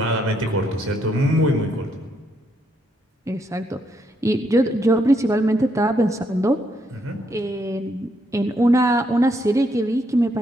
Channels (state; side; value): normal; both; correlation 0.75